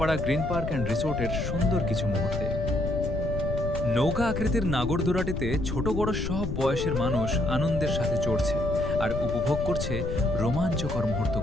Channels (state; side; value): noise; left; rumble, 4 dB below the sound